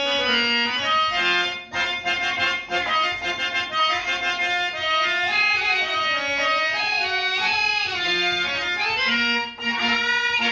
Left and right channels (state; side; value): identical; both; correlation 1.00